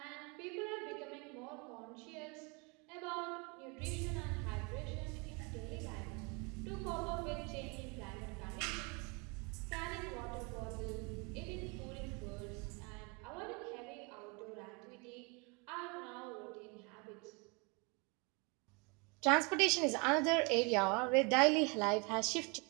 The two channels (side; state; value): left; quieter; 30.7 dB